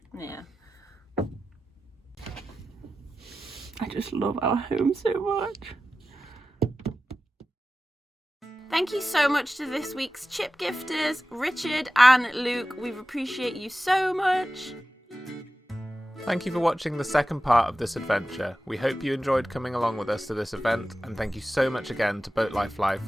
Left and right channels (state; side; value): normal; both; correlation 0.94